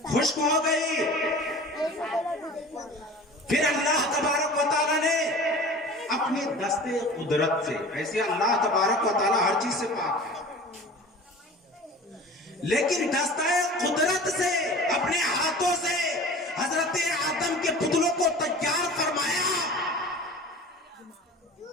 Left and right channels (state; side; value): normal; both; correlation 0.40